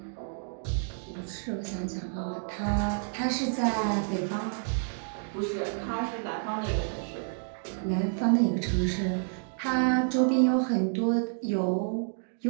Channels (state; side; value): silent; left; digital silence